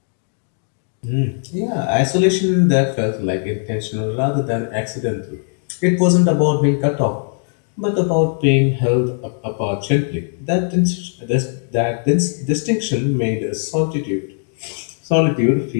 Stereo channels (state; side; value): silent; right; 59 dB below the other